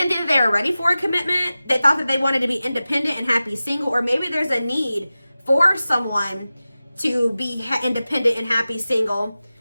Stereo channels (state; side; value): inverted; both; correlation -0.95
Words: think that they were ready for a commitment. They thought that they wanted to be independent and happy single, or maybe there's a need for someone to be independent and happy single,